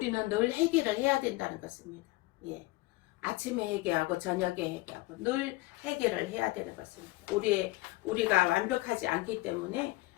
늘 회개를 해야 된다는 것입니다. 아침에 회개하고 저녁에 회개하고 늘 회개를 해야 되는 것입니다. 우리가 완벽하지 않기 때문에,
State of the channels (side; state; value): right; quieter; 20.3 dB